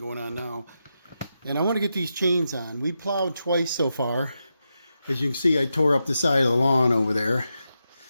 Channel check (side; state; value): both; inverted; correlation -0.87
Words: on now. And I want to get these chains on. We plowed twice so far. As you can see, I tore up the side of the lawn over there